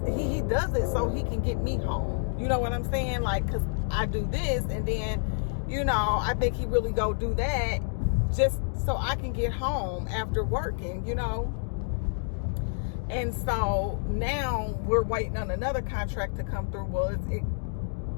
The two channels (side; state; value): right; silent; digital silence